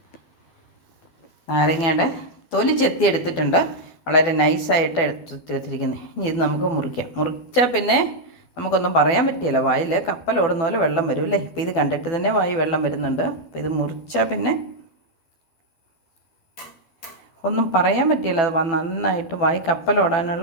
നാരങ്ങയുടെ തൊലി ചെത്തി എടുത്തിട്ടുണ്ട്. വളരെ നൈസായിട്ട് എടുത്തിരിക്കുന്നത്. ഇനി ഇത് നമുക്ക് മുറിക്കാം. മുറിച്ചാൽ പിന്നെ നമുക്കൊന്നും പറയാൻ പറ്റില്ല. വായിൽ കപ്പൽ ഓടുന്ന പോലെ വെള്ളം വരും അല്ലേ. ഇപ്പോൾ ഇത് കണ്ടിട്ട് തന്നെ വായി വെള്ളം വരുന്നുണ്ട്. അപ്പോൾ ഇത് മുറിച്ചാൽ പിന്നെ ഒന്നും പറയാൻ പറ്റില്ല. അത് നന്നായിട്ട് വായി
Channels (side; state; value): right; late; 12 ms